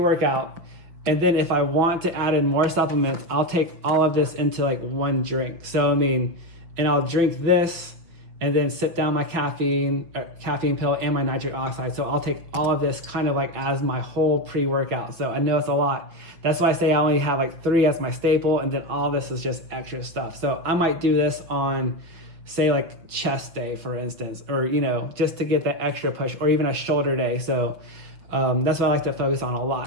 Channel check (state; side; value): late; left; 6.0 ms